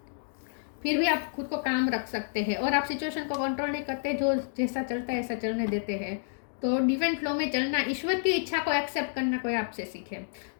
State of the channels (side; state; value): right; silent; digital silence